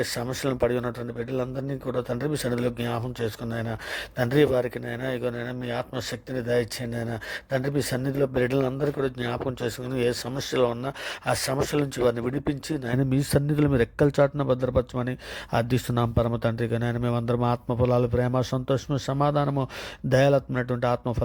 సమస్యలను పడి ఉన్నటువంటి బిడ్డలందరినీ కూడా తండ్రి మీ సన్నిధిలో జ్ఞాపకం చేసుకుని ఆయన తండ్రి వారికి నైనా ఇగోనైనా మీ ఆత్మశక్తిని దయచేయండి ఆయన. తండ్రి మీ సన్నిధిలో బిడ్డలందరూ కూడా జ్ఞాపకం చేసుకుని ఏ సమస్యలో ఉన్నా ఆ సమస్యల నుంచి వారిని విడిపించి నాయన మీ సన్నిధిలో మీరు ఎక్కల చాటున భద్రపరచమని అర్థిస్తున్నాం పరమ తండ్రిగా. నాయన మేమందరం ఆత్మఫలాలు, ప్రేమ, సంతోషము, సమాధానము, దయాలత్మైనటువంటి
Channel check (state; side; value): identical; both; correlation 1.00